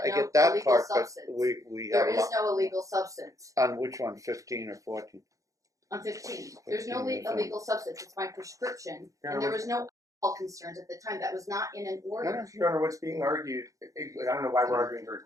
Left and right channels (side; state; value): left; late; 0.16 ms